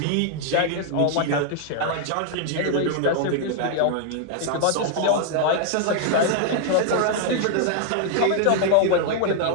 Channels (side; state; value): both; different; correlation -0.01